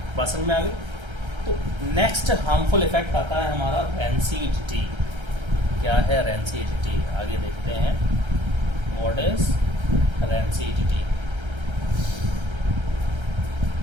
बात समझ में आ गई। तो नेक्स्ट हार्मफुल इफेक्ट आता है हमारा रेंसिडिटी। क्या है रेंसिडिटी, आगे देखते हैं। What is rancidity?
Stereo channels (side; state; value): left; late; 1.3 ms